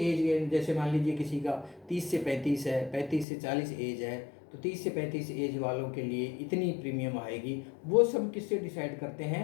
जैसे मान लीजिए किसी का 30 से 35 है, 35 से 40 एज है, तो 30 से 35 एज वालों के लिए इतनी प्रीमियम आएगी। वो सब किससे डिसाइड करते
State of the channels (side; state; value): right; drops out; at 3.2 s